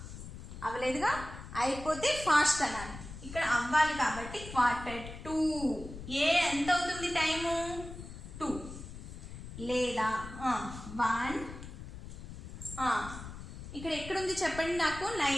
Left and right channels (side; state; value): left; noise; rumble, 12 dB below the sound